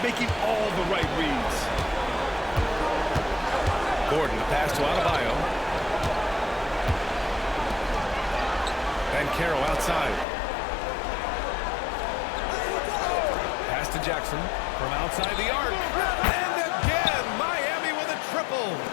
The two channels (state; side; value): drops out; right; at 10.2 s